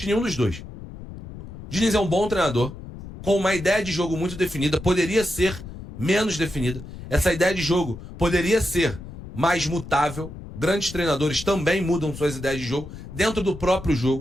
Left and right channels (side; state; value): left; noise; rumble, 13 dB below the sound